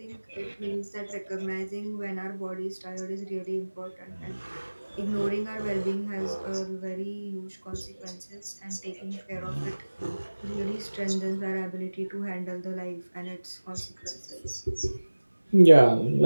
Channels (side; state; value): both; inverted; correlation -1.00